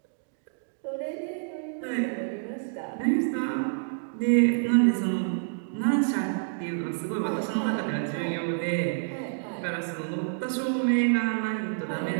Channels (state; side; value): silent; left; digital silence